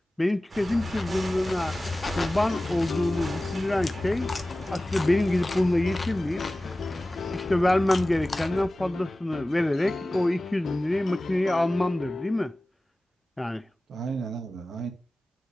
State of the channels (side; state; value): both; normal; correlation 0.97